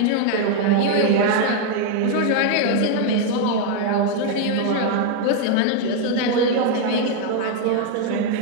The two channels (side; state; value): both; different; correlation 0.00